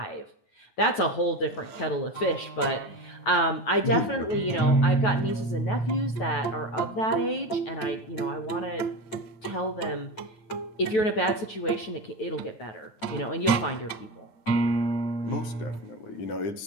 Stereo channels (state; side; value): late; right; 9.3 ms